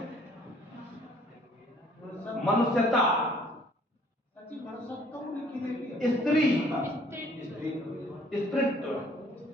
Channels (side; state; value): both; normal; correlation 0.59